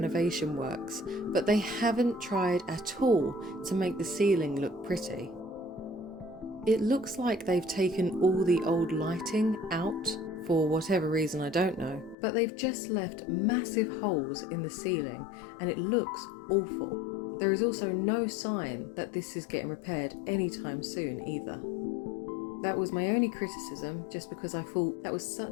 works, but they haven't tried at all to make the ceiling look pretty. It looks like they've taken all the old lighting out, for whatever reason I don't know, but they've just left massive holes in the ceiling and it looks awful. There is also no sign that this is getting repaired anytime soon either. That was my only criticism, just because I thought that was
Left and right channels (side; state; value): right; drops out; at 12.2 s